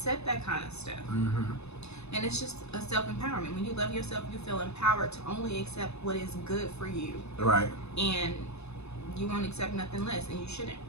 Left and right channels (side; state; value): right; late; 0.80 ms